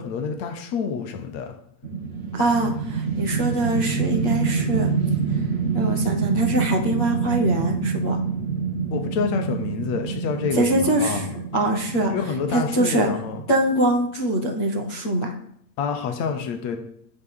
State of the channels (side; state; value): right; late; 8.6 ms